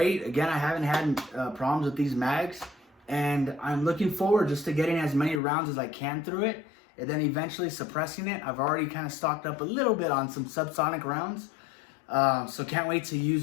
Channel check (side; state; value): right; drops out; at 5.4 s